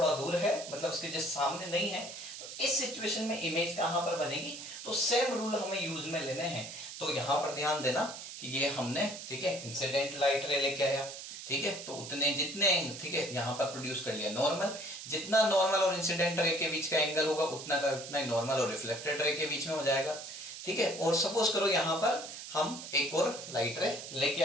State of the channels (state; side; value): noise; right; hiss, 10 dB below the sound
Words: दूर है, मतलब उसके जस्ट सामने नहीं है, तो इस सिचुएशन में इमेज कहां पर बनेगी, तो सेम रूल हमें यूज में लेने हैं। तो यहां पर ध्यान देना कि ये हमने, ठीक है, इंसिडेंट लाइट रे लेके आया। ठीक है, तो उतने जितने, ठीक है, यहां पर प्रोड्यूस कर लिया नॉर्मल, जितना नॉर्मल और इंसिडेंट रे के बीच का एंगल होगा उतना का उतना ही नॉर्मल और रिफ्लेक्टेड रे के बीच में हो जाएगा। ठीक है, और सपोज करो यहां पर हम एक और लाइट रे लेके